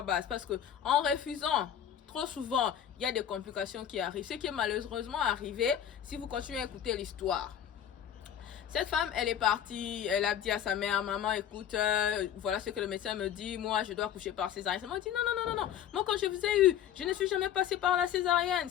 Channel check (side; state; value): right; quieter; 9.8 dB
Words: basse. Parce que en refusant, trop souvent, il y a des complications qui arrivent. Ce qui est malheureusement arrivé, si vous continuez à écouter l'histoire. Cette femme, elle est partie, elle a dit à sa mère, maman, écoute, voilà ce que le médecin me dit, moi, je dois accoucher par césarienne. Elle m'a dit, non, non, non, non, non, moi, quand je vous ai eu, je ne suis jamais passée par la césarienne.